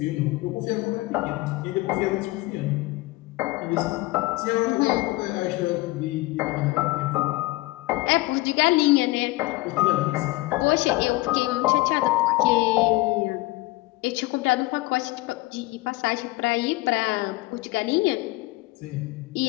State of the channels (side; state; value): right; quieter; 20.4 dB